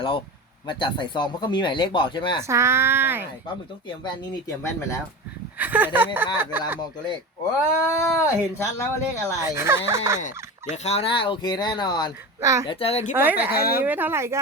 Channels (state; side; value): normal; both; correlation 0.27